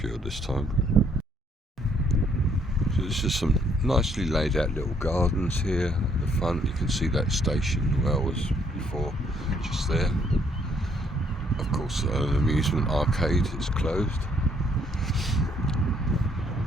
you this time. So there's just some nicely laid out little gardens here at the front. You can see that station where I was before, just there. Of course, an amusement arcade is closed.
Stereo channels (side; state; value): both; normal; correlation 0.67